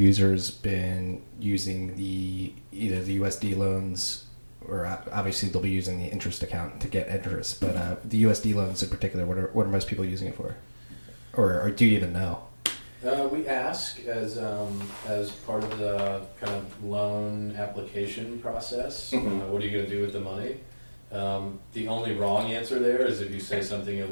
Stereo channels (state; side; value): inverted; both; correlation -1.00